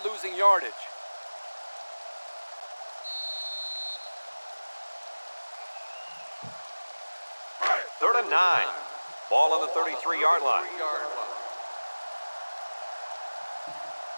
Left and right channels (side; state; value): both; inverted; correlation -1.00